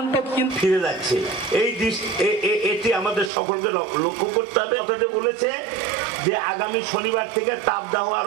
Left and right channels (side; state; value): left; drops out; at 3.3 s